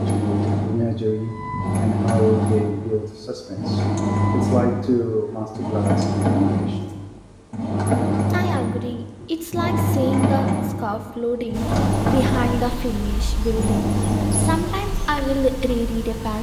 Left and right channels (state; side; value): identical; both; correlation 1.00